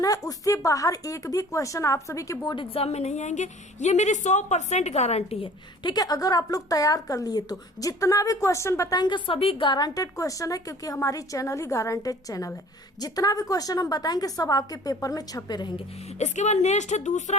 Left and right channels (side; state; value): both; normal; correlation 0.48